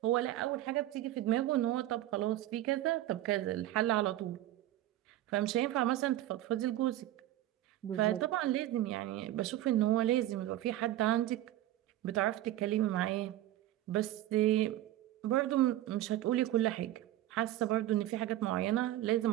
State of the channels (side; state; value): left; quieter; 14.2 dB